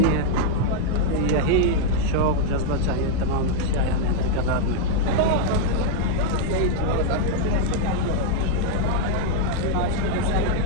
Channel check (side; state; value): both; different; correlation 0.00